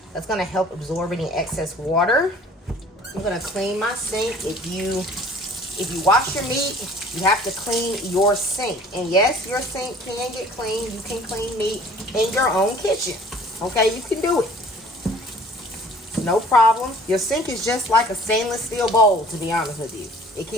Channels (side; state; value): both; normal; correlation 0.51